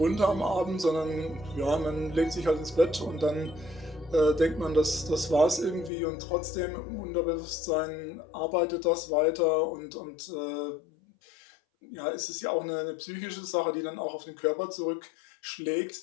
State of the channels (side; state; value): right; drops out; at 5.9 s